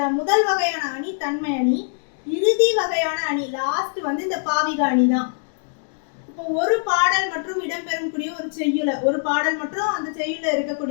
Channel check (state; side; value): silent; right; digital silence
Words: முதல் வகையான அணி தன்மை அணி, இறுதி வகையான அணி லாஸ்ட் இந்த பாவிக அணி தான். இப்போ ஒரு பாடல் மற்றும் இடம்பெறக்கூடிய ஒரு செய்யுள, ஒரு பாடல் மற்றும் அந்த செய்யுள்ள